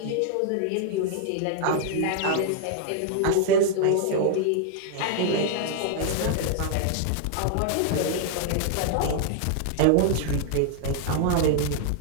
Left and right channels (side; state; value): both; different; correlation 0.00